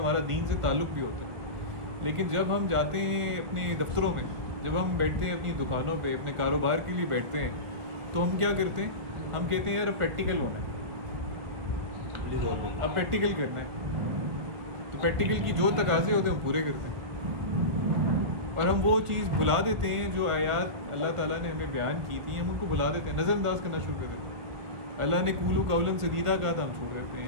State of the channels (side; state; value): left; late; 1.8 ms